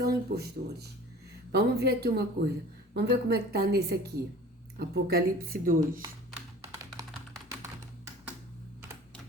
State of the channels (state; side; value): normal; both; correlation 0.44